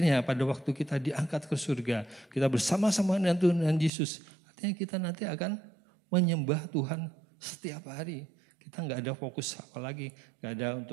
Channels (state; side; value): drops out; left; at 3.9 s